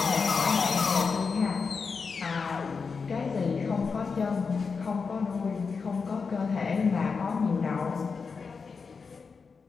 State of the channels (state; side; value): quieter; right; 5.1 dB